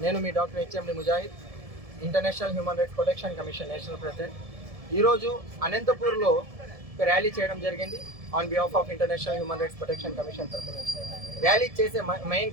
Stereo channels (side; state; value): left; late; 1.7 ms